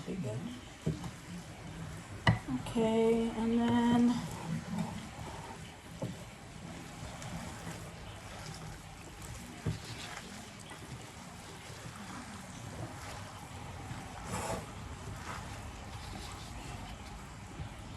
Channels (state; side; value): identical; both; correlation 1.00